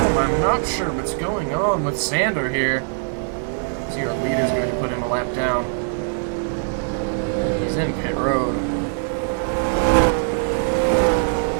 I'm not sure what's going on with Sander here. See, our leader's going to put him a lap down. He's in pit road.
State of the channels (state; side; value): silent; left; 64 dB below the other